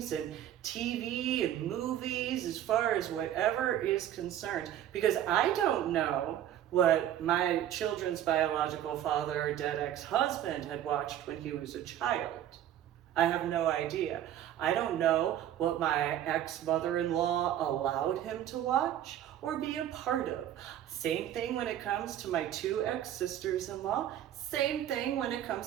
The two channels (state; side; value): quieter; left; 11.4 dB